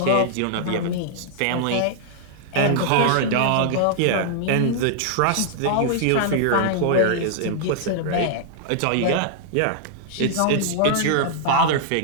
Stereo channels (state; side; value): different; both; correlation -0.01